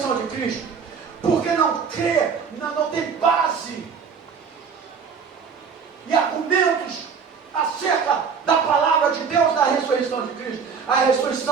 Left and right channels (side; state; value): left; quieter; 6.0 dB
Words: de Cristo, porque não crê, não tem base e argumentos acerca da palavra de Deus, da ressurreição de Cristo. A